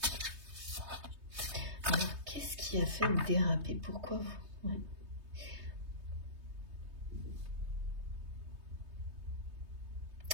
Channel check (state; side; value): late; left; 3.2 ms